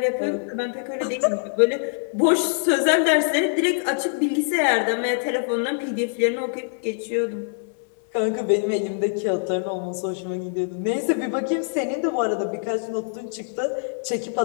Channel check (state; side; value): silent; right; digital silence